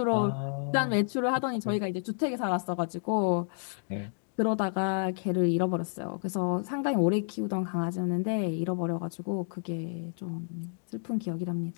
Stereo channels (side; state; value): right; silent; digital silence